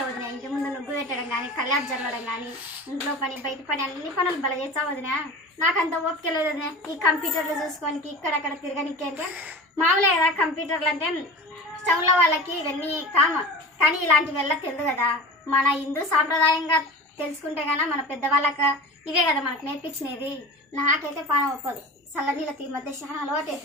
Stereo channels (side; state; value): both; normal; correlation 0.34